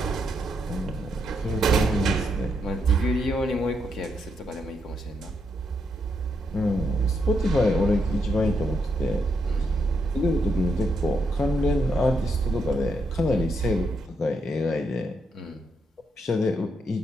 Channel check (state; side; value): normal; both; correlation 0.79